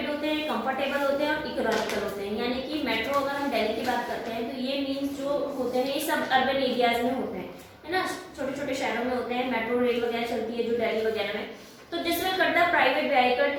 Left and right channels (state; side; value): identical; both; correlation 1.00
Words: होते हैं, कंफर्टेबल होते हैं और इकोनॉमिकल होते हैं। यानी कि मेट्रो अगर हम दिल्ली की बात करते हैं तो ये मीन्स जो होते हैं ये सब अर्बन एरियाज में होते हैं, है ना, छोटे छोटे शहरों में होते हैं। मेट्रो रेल वगैरह चलती है जो दिल्ली वगैरह में, तो this will cut the private vehicle